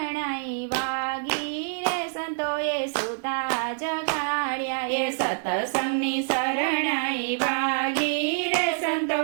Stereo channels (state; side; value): silent; left; 61 dB below the other